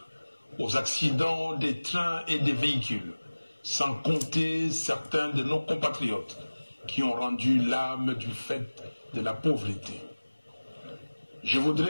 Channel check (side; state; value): both; inverted; correlation -1.00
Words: aux accidents des trains et des véhicules, sans compter certains de nos compatriotes qui ont rendu l'âme du fait de la pauvreté. Je